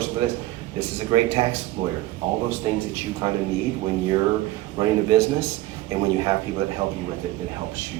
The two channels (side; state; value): left; quieter; 16.9 dB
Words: for this. This is a great tax lawyer. All those things that you kind of need when you're running a business, and when you have people that help you with it, that helps